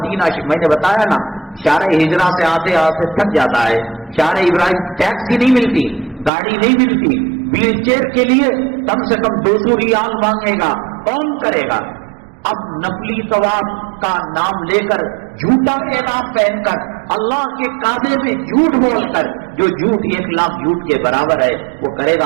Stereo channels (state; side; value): drops out; left; at 6.3 s